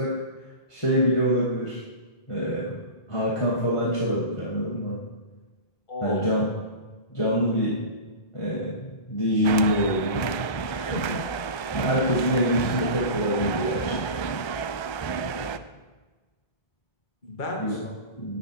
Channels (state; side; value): late; right; 1.3 ms